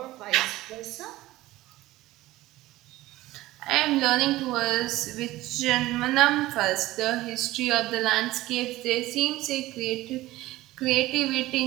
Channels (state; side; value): quieter; left; 17.2 dB